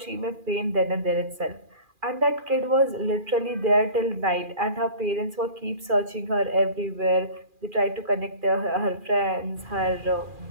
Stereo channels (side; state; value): left; late; 2.4 ms